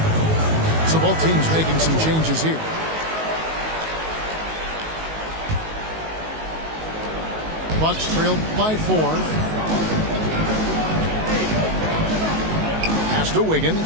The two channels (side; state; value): left; late; 19 ms